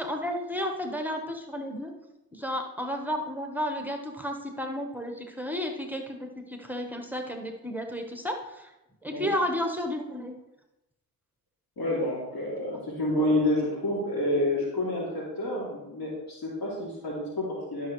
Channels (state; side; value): normal; both; correlation 0.25